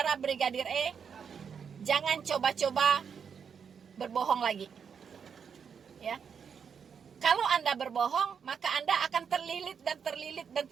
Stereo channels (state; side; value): quieter; left; 6.9 dB